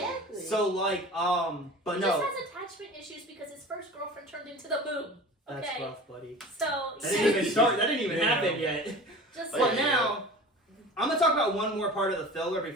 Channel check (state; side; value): normal; both; correlation 0.38